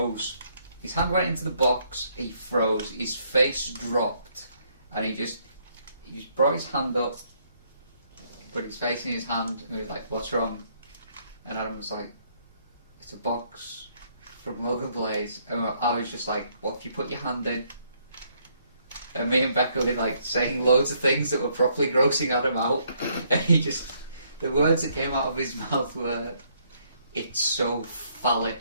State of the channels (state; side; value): inverted; both; correlation -0.70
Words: His hand went into the box, he froze, his face dropped, and he just brought his hand up, put his face in his hand, and he was like, "What's wrong?" And Adam was like, "It's a box from Logan Blaze." And I was just like, "What if you put your hand in?" And me and Becca were like saying loads of things that were properly grossing Adam out, and the words that came out of his mouth were, "It's so